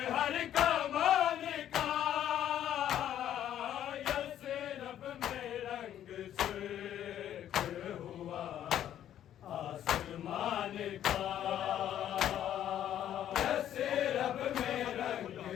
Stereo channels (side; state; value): right; quieter; 11.0 dB